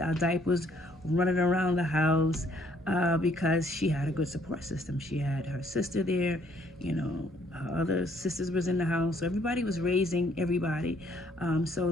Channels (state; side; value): normal; both; correlation 0.65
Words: our diapers running around the house because she had a good support system. She had her sister there, her other sisters was in the house, so everybody was raising everybody.